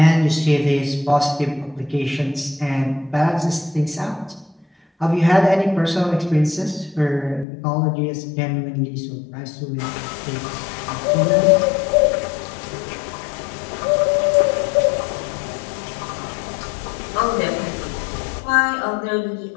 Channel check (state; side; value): drops out; right; at 7.5 s